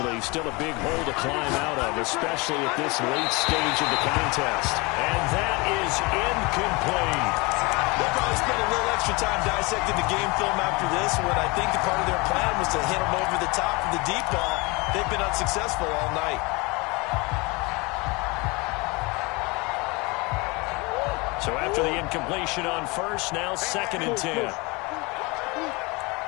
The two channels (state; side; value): quieter; right; 26.3 dB